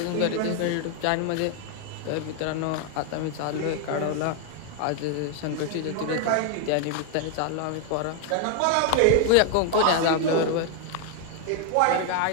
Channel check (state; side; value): different; both; correlation 0.00